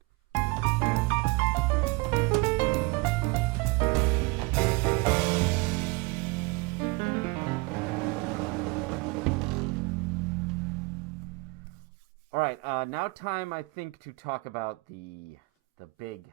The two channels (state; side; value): quieter; left; 27.0 dB